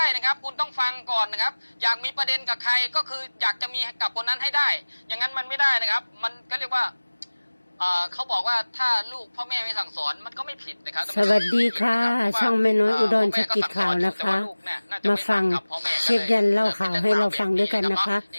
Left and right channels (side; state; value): both; inverted; correlation -1.00